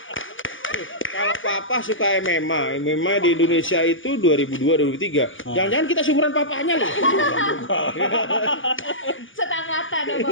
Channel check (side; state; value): right; late; 0.57 ms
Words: Kalau papa suka MMA di Indonesia itu 2002-2003. Jangan-jangan kita seumuran papanya loh. Setangkatan sama